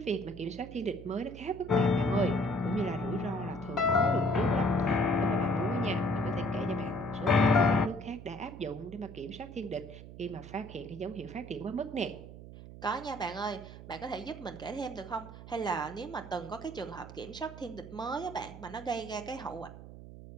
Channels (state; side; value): noise; right; hum, 14 dB below the sound